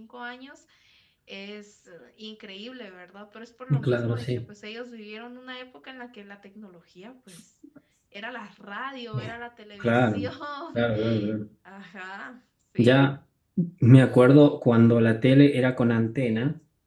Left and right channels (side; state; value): both; identical; correlation 1.00